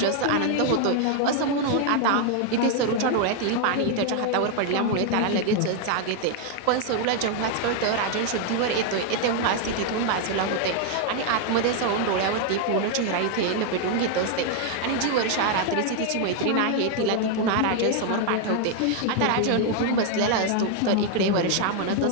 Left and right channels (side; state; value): both; different; correlation 0.00